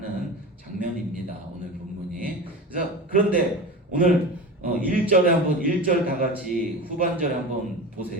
장면입니다. 오늘 본문이. 그래서 그런데 오늘 1절에 한번 1절 다 같이 후반절에 한번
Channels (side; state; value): both; normal; correlation 0.29